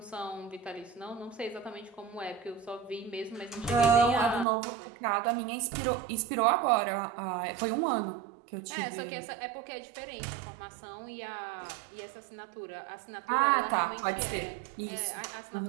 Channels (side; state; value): left; drops out; at 4.5 s